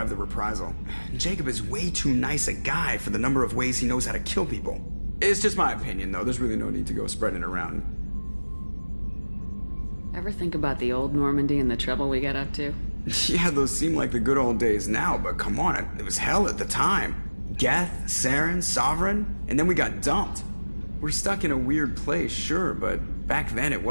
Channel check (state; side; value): inverted; both; correlation -1.00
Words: the reprisal. Jacob is way too nice a guy for the number of ways he knows how to kill people. It's just my opinion, though. There's really no need to go spreading it around. Ever think about the old Normandy and the trouble we got up to? Yeah, those seem like the good old days now, but come on, it was hell at the time. Geth, Saren, Sovereign, and then we got dumped. We're stuck in a weird place, sure, but back then it